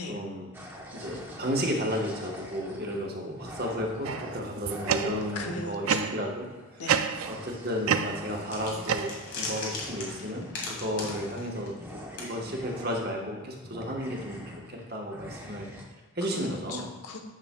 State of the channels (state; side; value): normal; both; correlation 0.21